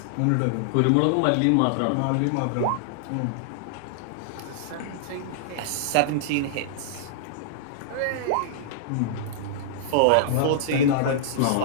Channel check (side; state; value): both; different; correlation -0.01